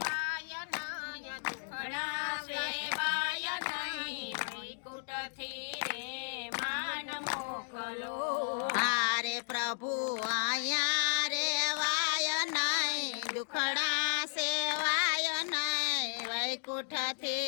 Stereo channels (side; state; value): right; silent; digital silence